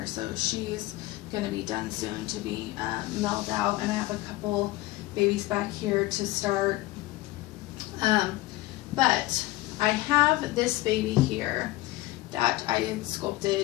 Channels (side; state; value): right; quieter; 18.6 dB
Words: so she's going to be done soon to be mailed out, and I have a couple babies back here to start. But I have this baby here that I had